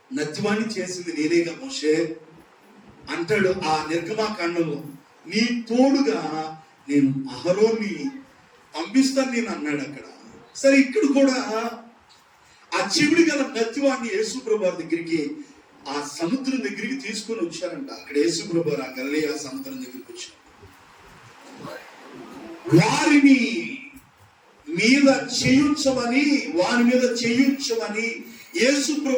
నత్తివాణ్ణి చేసింది నేనేగా మోషే అంటాడు ఆ నిర్గమాకాండంలో. నీ తోడుగా నేను అహరోన్ని పంపిస్తాను నేను అన్నాడు అక్కడ. సరే, ఇక్కడ కూడా ఆ చెవిడి గల నత్తివాణ్ణి యేసుప్రభు వారి దగ్గరికి, ఆ సముద్రం దగ్గరికి తీసుకొని వచ్చారంట. అక్కడ యేసుప్రభు వారు ఆ గలిలయ సముద్రం దగ్గరికి వచ్చారు. వారిని మీద చేయించమని, వారి మీద చేయించమని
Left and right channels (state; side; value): identical; both; correlation 1.00